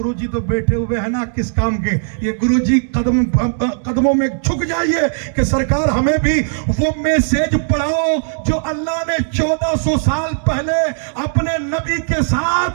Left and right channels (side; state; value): left; silent; digital silence